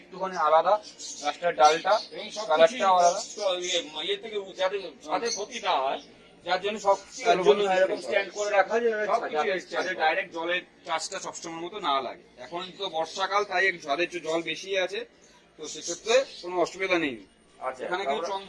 একটুখানি আলাদা গাছটার ডালটা এবং সব কালারটাও আলাদা। ইয়ে থেকে যাতে ছাদে ক্ষতি না হয়, যার জন্য সব তার জন্য এরকম স্ট্যান্ড করে রাখা যায় সব কিছু যাতে stand ছাদে করা। ডাইরেক্ট জলের চাষটা সবসময় মতো না লাগে। এখন তো বর্ষাকাল, তাই একটু ছাদে একটু জল বেশি আছে, তো সেক্ষেত্রে কোনো অসুবিধা নেই। আচ্ছা, এখানে কিছু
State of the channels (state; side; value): identical; both; correlation 1.00